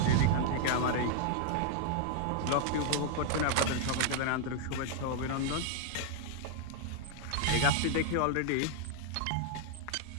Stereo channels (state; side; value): different; both; correlation 0.00